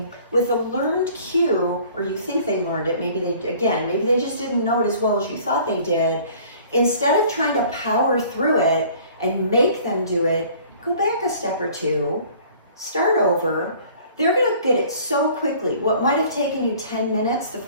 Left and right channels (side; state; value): both; inverted; correlation -0.52